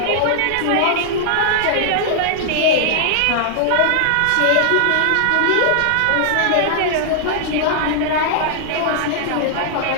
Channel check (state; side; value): different; both; correlation -0.01